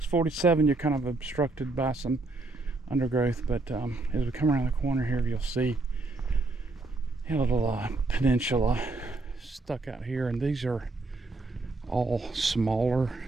47, you're kind of obstructed by some undergrowth, but as we come around the corner here, you'll see a little peninsula stuck out here, and these are all smaller,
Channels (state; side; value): quieter; left; 3.2 dB